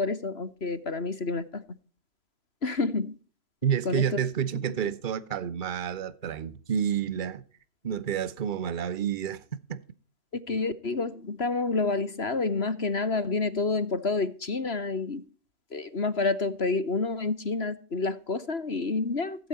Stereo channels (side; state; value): right; late; 3.0 ms